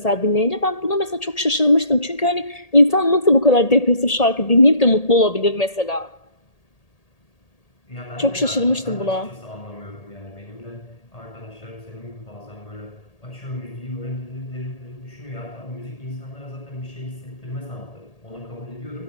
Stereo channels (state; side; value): late; right; 1.8 ms